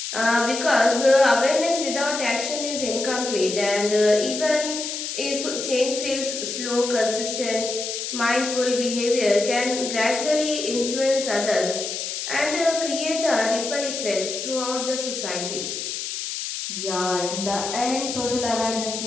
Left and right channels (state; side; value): noise; left; hiss, 5 dB below the sound